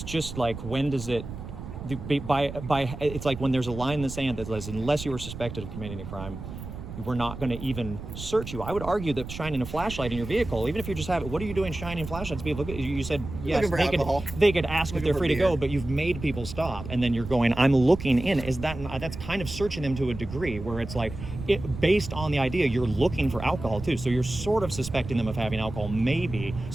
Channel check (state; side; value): noise; right; rumble, 10 dB below the sound